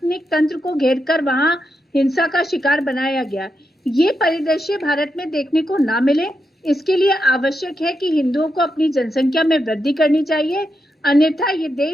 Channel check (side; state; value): both; normal; correlation 0.85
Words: तंत्र को घेरकर वहां हिंसा का शिकार बनाया गया, ये परिदृश्य भारत में देखने को ना मिले। इसके लिए आवश्यक है कि हिंदुओं को अपनी जनसंख्या में वृद्धि करनी चाहिए, अन्यथा ये